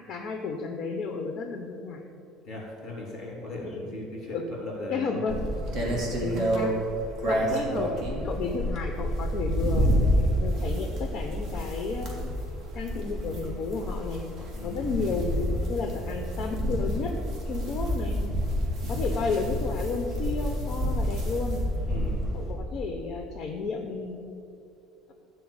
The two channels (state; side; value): normal; both; correlation 0.63